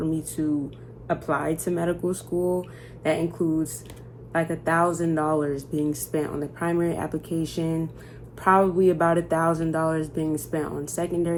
me to apply to medical school. That includes like $1,000 being spent on the primary application, probably about $1,000 being spent on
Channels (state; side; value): identical; both; correlation 1.00